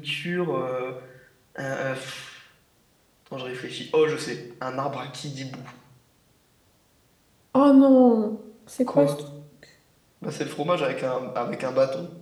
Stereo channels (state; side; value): identical; both; correlation 1.00